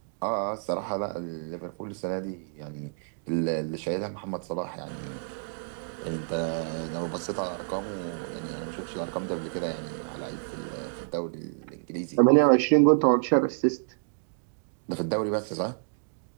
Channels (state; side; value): silent; left; digital silence